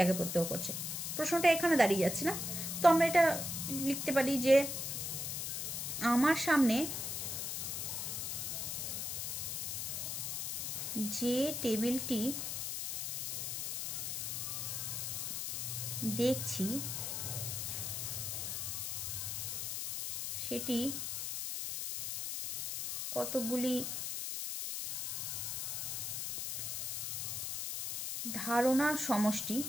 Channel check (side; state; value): left; noise; hiss, 3 dB below the sound